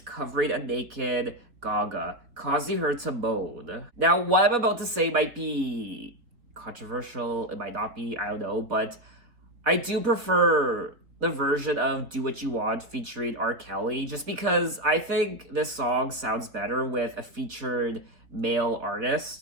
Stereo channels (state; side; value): late; left; 4.0 ms